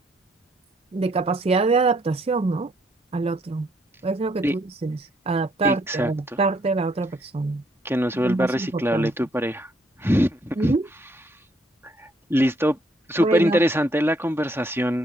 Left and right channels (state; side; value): normal; both; correlation 0.69